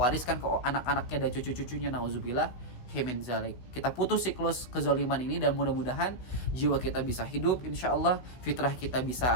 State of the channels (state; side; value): late; right; 16 ms